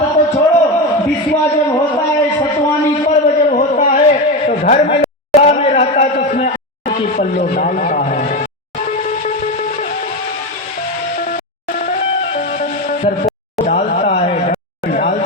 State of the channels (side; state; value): both; normal; correlation 0.17